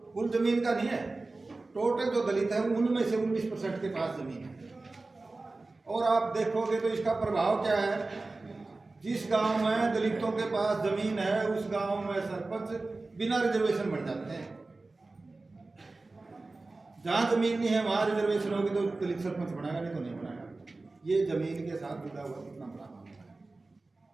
कुल जमीन का नहीं है, टोटल जो दलित है उनमें से 19% के पास जमीन है। और आप देखोगे तो इसका प्रभाव क्या है, जिस गांव में दलितों के पास जमीन है उस गांव में सरपंच बिना रिजर्वेशन बन जाते हैं। जहाँ जमीन नहीं है वहाँ रिजर्वेशन होगी तो दलित सरपंच बनाएगा, नहीं तो नहीं बनाएगा। ये जमीन के साथ जुड़ा हुआ कितना बड़ा मामला है।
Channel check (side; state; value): left; quieter; 3.3 dB